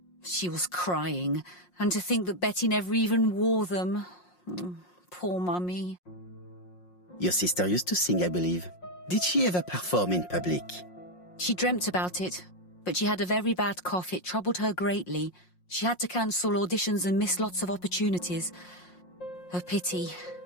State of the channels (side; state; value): right; late; 5.6 ms